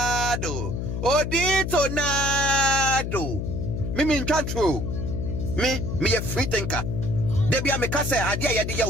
nado. Me can't true. Me a free thinker. They be a me kase adia ya dia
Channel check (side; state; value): left; noise; hum, 3 dB below the sound